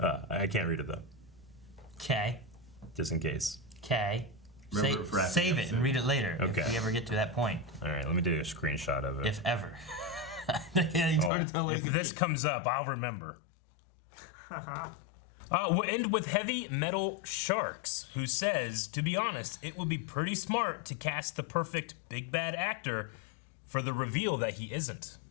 can't read it though. Okay. Just in case. Okay. Remember it for after Save the it and episode. read it later Okay. if we ever get to that point. All right, let me do a screenshot of it. If ever. It's hard to tell what If it this comes up, I'll remember. We'll end with Heavy Metal Sharks, who says, to be honest, it would be pretty smart to cast the perfect big bad actor for the reveal that he isn't.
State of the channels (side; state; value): right; drops out; at 11.3 s